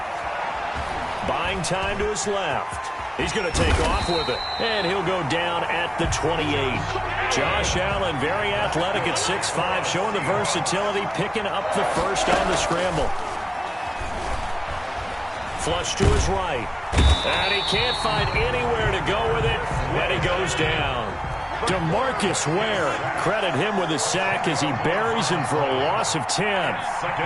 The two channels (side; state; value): both; identical; correlation 1.00